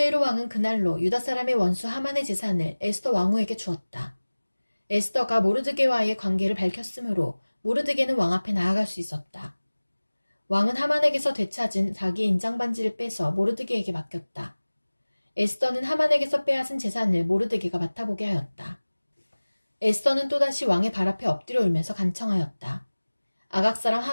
왕은 그날로 유다 사람의 원수 하만의 재산을 에스더 왕후에게 주었다. 에스더가 모르드게와의 관계를 밝혔으므로 모르드게는 왕 앞에 나아갈 수 있었다. 왕은 하만에게서 되찾은 자기의 인장반지를 빼서 모르드게에게 맡겼다. 에스더는 하만에게서 빼앗은 재산을 모르드게가 맡아보게 하였다. 에스더는 또다시 왕의 발 앞에 엎드려 울면서 간청하였다. 아각 사람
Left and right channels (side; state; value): both; inverted; correlation -1.00